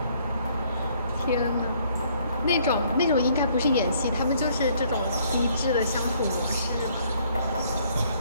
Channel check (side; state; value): both; inverted; correlation -0.64